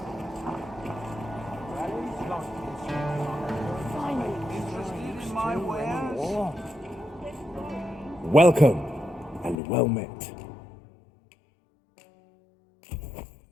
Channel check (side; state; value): right; drops out; at 9.6 s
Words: Welcome and well met.